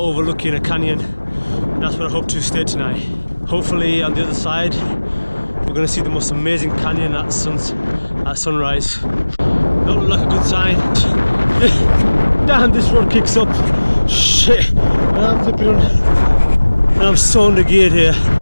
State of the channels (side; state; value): both; inverted; correlation -1.00